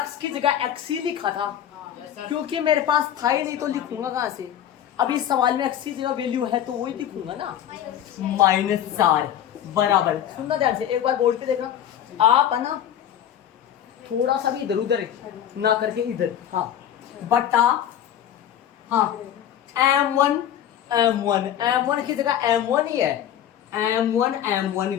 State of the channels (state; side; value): quieter; right; 10.3 dB